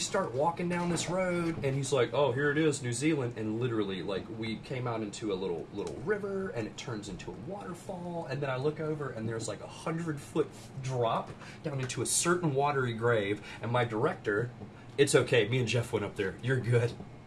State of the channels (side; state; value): both; identical; correlation 1.00